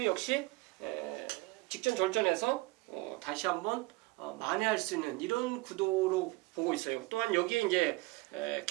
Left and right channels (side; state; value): left; quieter; 22.3 dB